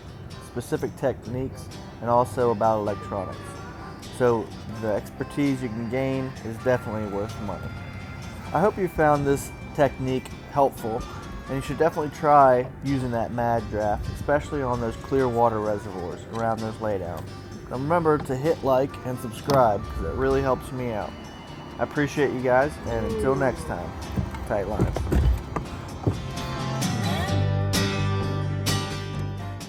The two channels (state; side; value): identical; both; correlation 1.00